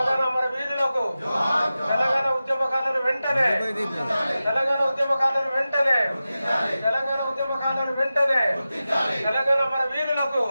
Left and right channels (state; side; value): inverted; both; correlation -0.94